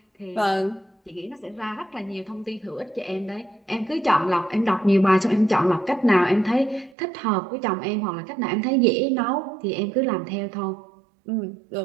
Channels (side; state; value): left; drops out; at 7.0 s